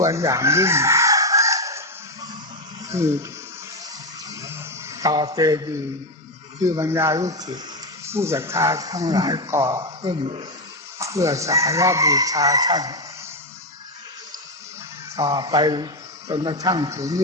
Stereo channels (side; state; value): both; normal; correlation 0.08